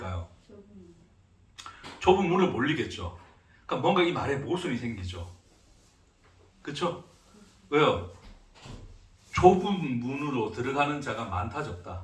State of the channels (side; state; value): both; identical; correlation 1.00